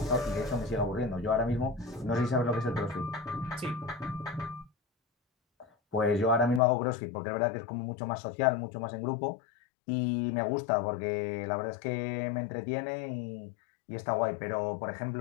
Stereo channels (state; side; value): drops out; right; at 6.6 s